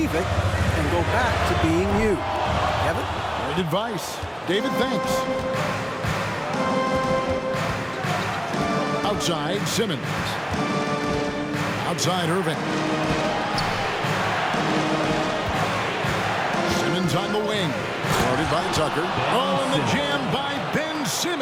it and go back to being you. Kevin? Great advice. David, thanks. Outside, Simmons. Outside, Irving. Simmons on the wing. Guarded by Tucker. Oh, and the jam by Ben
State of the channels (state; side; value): identical; both; correlation 1.00